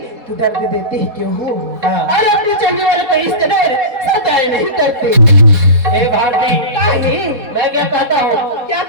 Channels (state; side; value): late; left; 4.2 ms